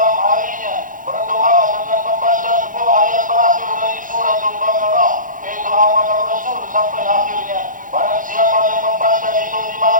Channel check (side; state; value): left; late; 0.39 ms